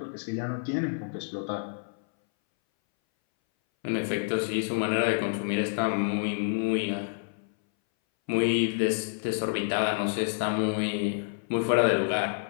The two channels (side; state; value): right; silent; 59 dB below the other